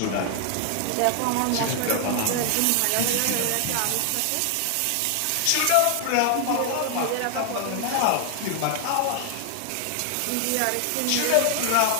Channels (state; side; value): different; both; correlation 0.00